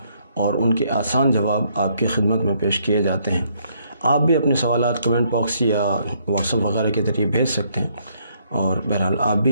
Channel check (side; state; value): both; inverted; correlation -0.70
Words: اور ان کے آسان جواب آپ کی خدمت میں پیش کیے جاتے ہیں۔ آپ بھی اپنے سوالات کمنٹ باکس یا واٹس ایپ وغیرہ کے ذریعے بھیج سکتے ہیں، اور بہرحال آپ